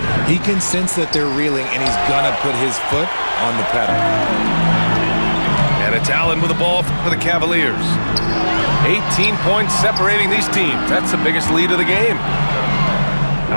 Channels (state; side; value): inverted; both; correlation -1.00